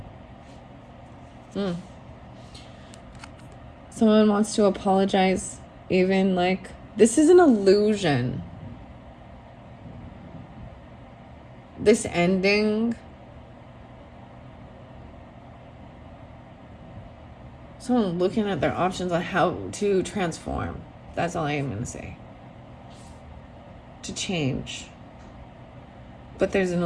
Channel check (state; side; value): identical; both; correlation 1.00